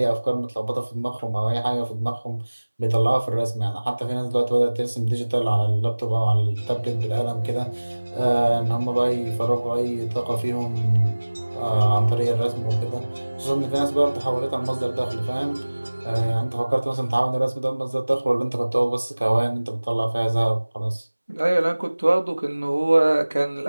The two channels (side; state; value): both; inverted; correlation -1.00